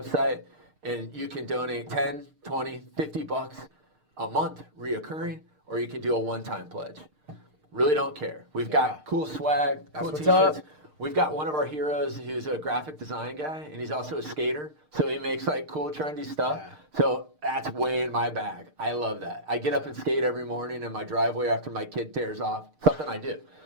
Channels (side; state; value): left; late; 6.5 ms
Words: and you can donate 10, 20, 50 bucks a month reoccurring, or you can do a one-time pledge. Really don't care. We've got cool swag, cool t-shirts. We've got one of our heroes who's a graphic design guy, and he's also a skater, so he makes like cool, trendy stuff. So that's way in my bag. I love that. I get up and skate every morning in my driveway after my kid tears off. Something I do.